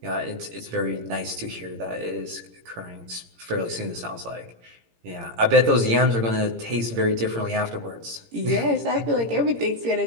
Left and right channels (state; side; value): late; left; 17 ms